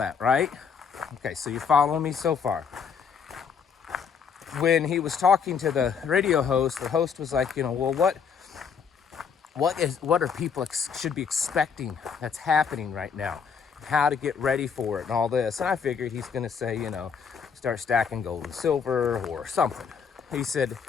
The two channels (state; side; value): quieter; right; 6.5 dB